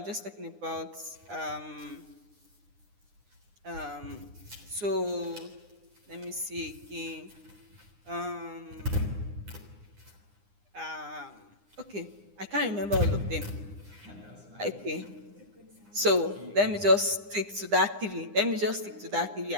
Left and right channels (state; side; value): late; left; 9.8 ms